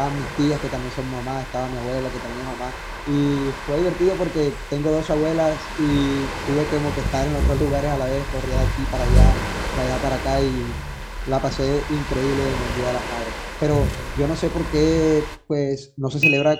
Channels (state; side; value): identical; both; correlation 1.00